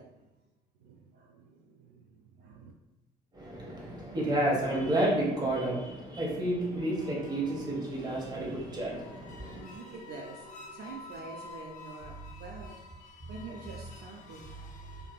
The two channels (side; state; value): both; normal; correlation 0.57